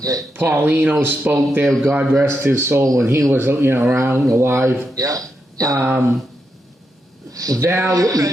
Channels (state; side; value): normal; both; correlation 0.84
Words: spoke there, God rest his soul, when he was around, alive. Yeah. They have